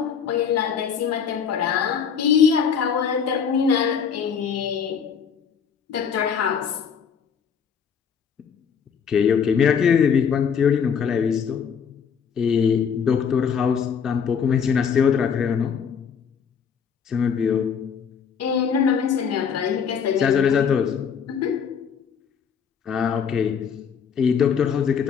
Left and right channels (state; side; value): quieter; right; 7.0 dB